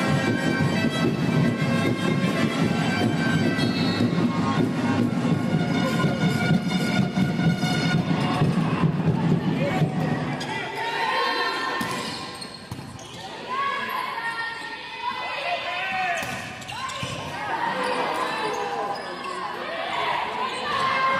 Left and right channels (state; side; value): noise; right; hum, 28 dB below the sound